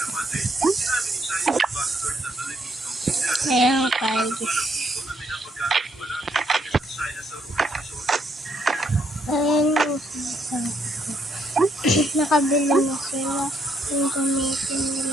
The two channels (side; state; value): both; normal; correlation 0.73